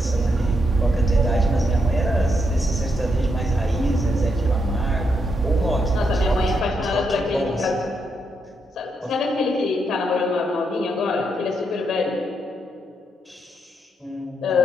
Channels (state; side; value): normal; both; correlation 0.80